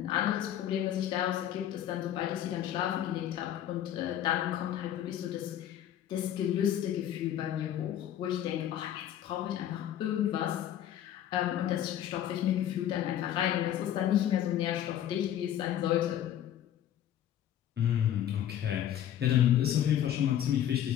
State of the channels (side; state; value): right; quieter; 11.1 dB